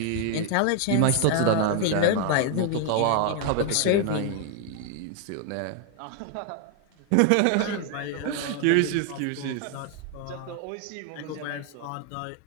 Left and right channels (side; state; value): both; different; correlation 0.00